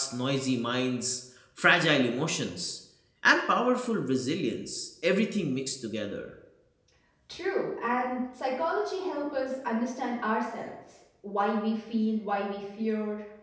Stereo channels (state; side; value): identical; both; correlation 1.00